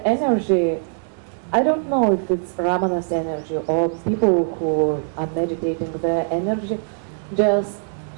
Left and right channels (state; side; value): silent; left; digital silence